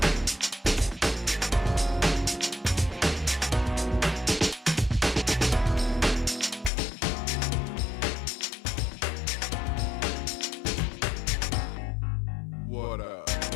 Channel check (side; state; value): right; drops out; at 6.7 s